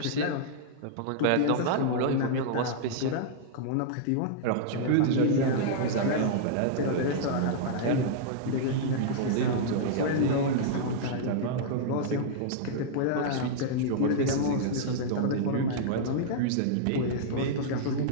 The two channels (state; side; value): different; both; correlation -0.02